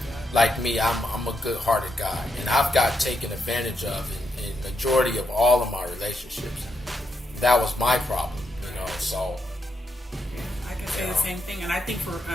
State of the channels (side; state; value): both; normal; correlation 0.81